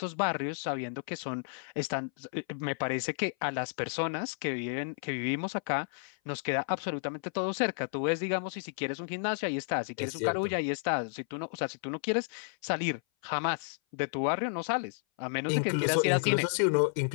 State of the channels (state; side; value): silent; right; 56 dB below the other